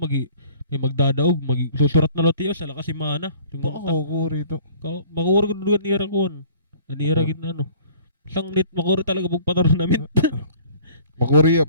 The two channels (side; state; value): both; inverted; correlation -0.51